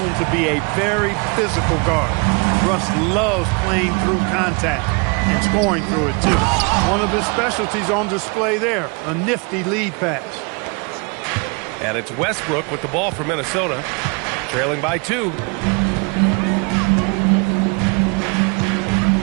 to be a very physical guard. Russ loves playing through contact and scoring through it, too. One of his specialties on display there, a nifty lead pass. And it's Westbrook with the ball for Minnesota, trailing by 2.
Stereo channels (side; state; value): left; quieter; 32.4 dB